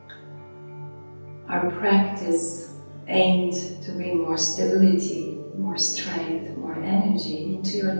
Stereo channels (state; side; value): inverted; both; correlation -1.00